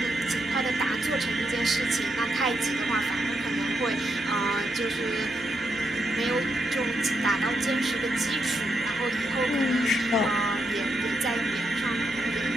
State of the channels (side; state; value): both; normal; correlation 0.81